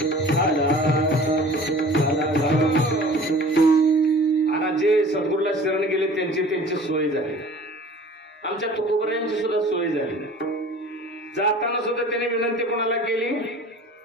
आणि जे सद्गुरूला शरण गेले त्यांची सोय झाली. आमच्या तुकोबऱ्यांची सुद्धा सोय झाली. जाताना सुद्धा त्याने विनंती कोणाला केली?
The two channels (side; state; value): both; normal; correlation 0.45